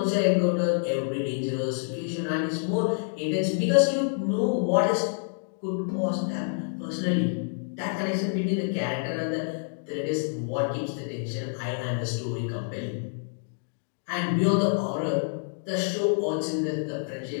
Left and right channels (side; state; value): right; silent; digital silence